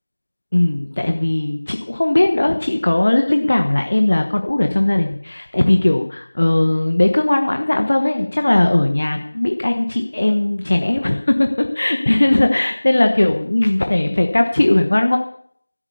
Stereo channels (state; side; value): inverted; both; correlation -1.00